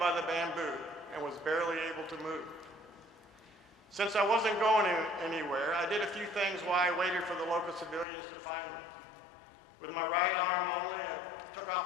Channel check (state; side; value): drops out; right; at 8.1 s